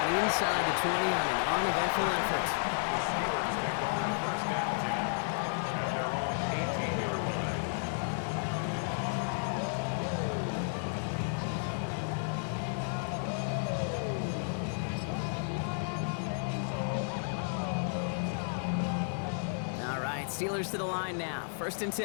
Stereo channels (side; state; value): right; silent; 56 dB below the other